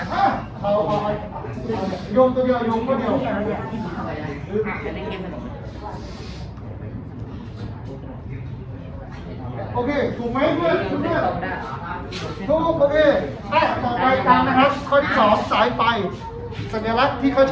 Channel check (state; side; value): identical; both; correlation 1.00